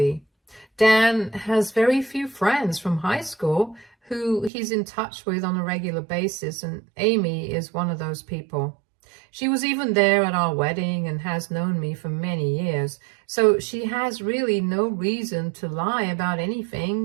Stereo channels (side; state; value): left; drops out; at 4.5 s